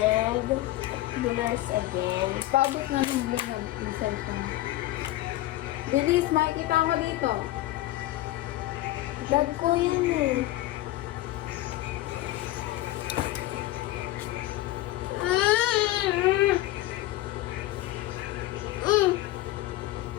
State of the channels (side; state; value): right; quieter; 16.3 dB